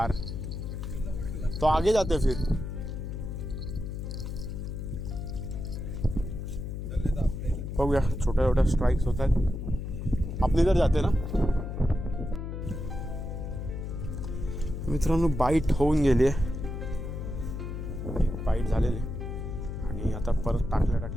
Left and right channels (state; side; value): noise; left; hum, 6 dB below the sound